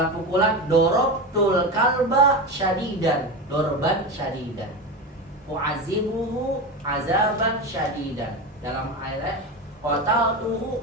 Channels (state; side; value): normal; both; correlation 0.21